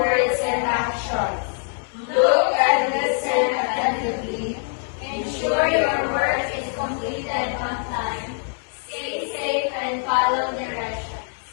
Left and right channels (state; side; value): silent; right; 63 dB below the other